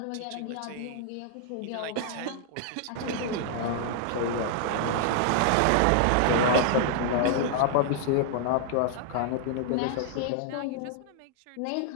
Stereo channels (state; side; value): different; both; correlation -0.01